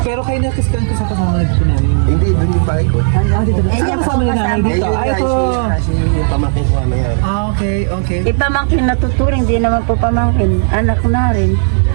Pero kayo nakiskan ko sa kasama nagpo namin. Hindi, dun yung bahay ko. Dito. yan po Kasama ni nanay dito. kasama. Ay, ito. Yung pamangkin ko ano yan. Okay. Ipamangkin na tuturing, hindi naman po pamangkin. Anak na rin.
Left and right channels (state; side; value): silent; left; digital silence